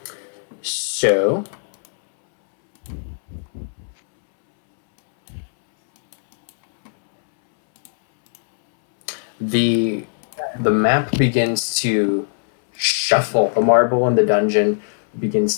So the map begins to shuffle. The marble in the dungeon begins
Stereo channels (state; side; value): silent; right; 66 dB below the other